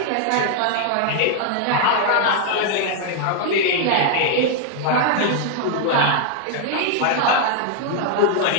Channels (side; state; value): both; different; correlation 0.00